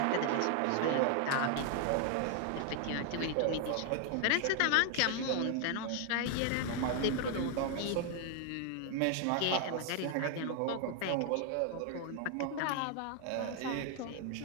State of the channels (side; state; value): both; different; correlation 0.00